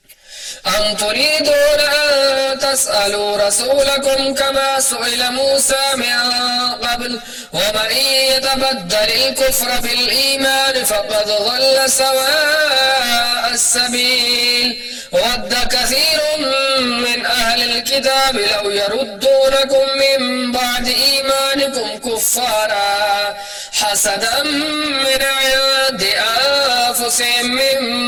أم تريدون أن تسألوا رسولكم كما سئل موسى من قبل ومن يتبدل الكفر بالإيمان فقد ضل سواء السبيل ود كثير من أهل الكتاب لو يردونكم من بعد إيمانكم كفارا حسدا من عند أنفسهم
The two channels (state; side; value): identical; both; correlation 1.00